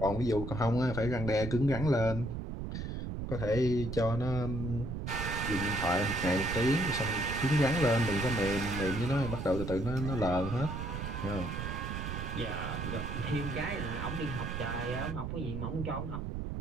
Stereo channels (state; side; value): noise; right; rumble, 5 dB below the sound